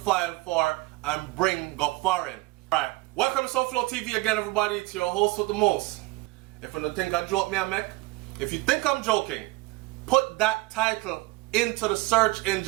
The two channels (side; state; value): left; quieter; 21.6 dB